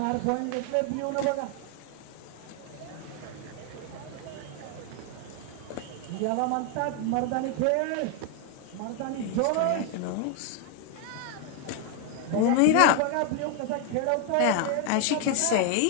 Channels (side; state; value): both; different; correlation 0.00